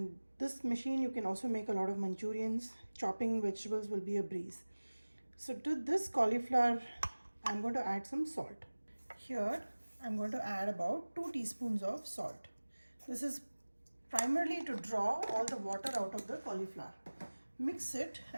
this machine, you can also make a lot of Manchurians. Chopping vegetables will be a breeze. So to this cauliflower, I'm going to add some salt. Here, I'm going to add about 2 teaspoons of salt. This is primarily to draw all the water out of the cauliflower. Mix it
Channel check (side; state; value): both; inverted; correlation -1.00